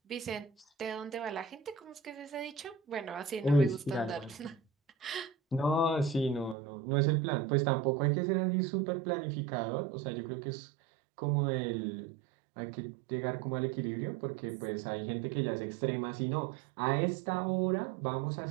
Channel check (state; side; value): drops out; left; at 6.6 s